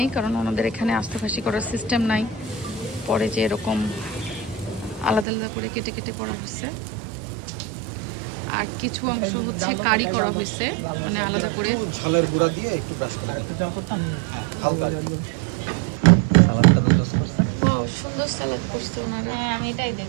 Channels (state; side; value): drops out; left; at 5.2 s